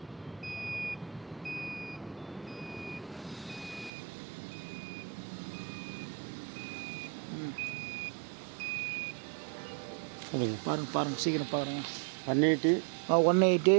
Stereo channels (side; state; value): left; drops out; at 3.9 s